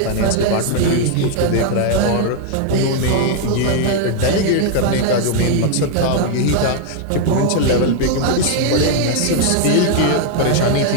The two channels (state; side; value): different; both; correlation 0.00